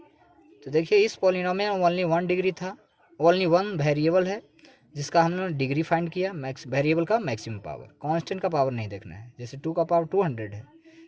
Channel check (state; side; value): identical; both; correlation 1.00